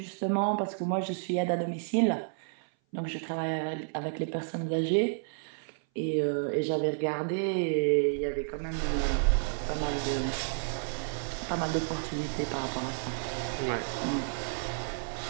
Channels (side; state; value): left; silent; 56 dB below the other